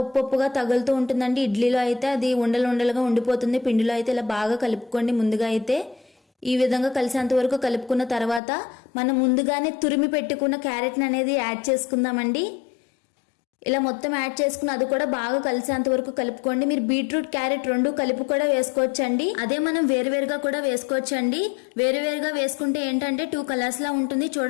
ఉప్పుగా తగులుతూ ఉంటుందండి. ఇడ్లీలో అయితే అది ఉండలుగా ఉండిపోతుంది. పిండిలో అయితే ఇలా బాగా కలుపుకోండి. ముందుగా అయితే ఈ విధంగా కలిసేంత వరకు కలుపుకున్న తర్వాత మనం ముందుగానే తురిమి పెట్టుకున్న క్యారెట్ని అనేది యాడ్ చేసుకుందామండి. ఇలా మొత్తం యాడ్ చేసుకుని అది కూడా బాగా కలిసేంత వరకు కలుపుకోండి. మీరు బీట్రూట్ క్యారెట్ 2 కలిపి కూడా వేసుకోవచ్చండి. అదే మనం వేరువేరుగా కూడా వేసుకోవచ్చండి. వేరువేరుగా వేసుకుంటే ఏంటంటే 2 కలర్స్ లా ఉంటుంది,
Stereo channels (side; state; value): right; drops out; at 8.4 s